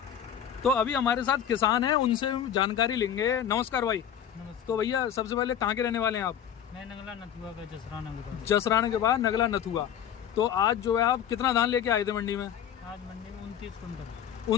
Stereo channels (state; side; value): quieter; right; 9.3 dB